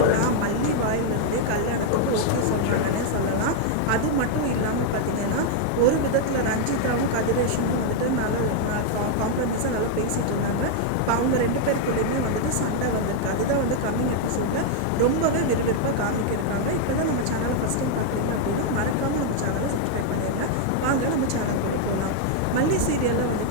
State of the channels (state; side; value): different; both; correlation 0.00